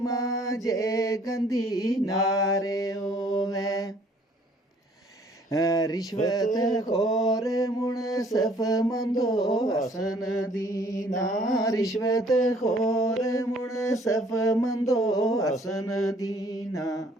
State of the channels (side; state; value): both; normal; correlation 0.59